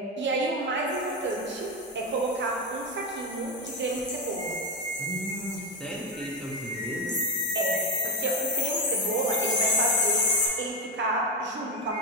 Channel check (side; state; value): both; normal; correlation 0.12